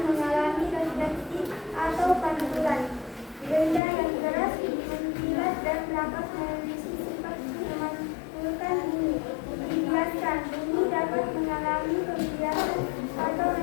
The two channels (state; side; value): drops out; right; at 3.8 s